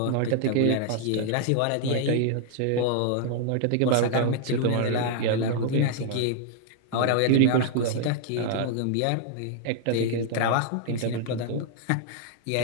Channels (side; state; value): both; different; correlation -0.01